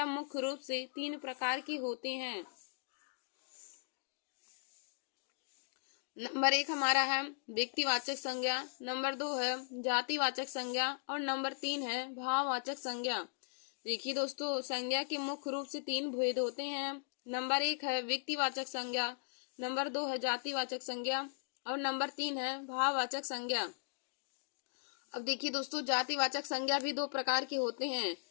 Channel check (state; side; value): silent; right; digital silence